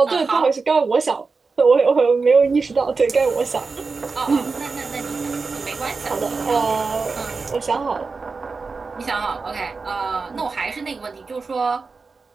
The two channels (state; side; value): quieter; left; 4.4 dB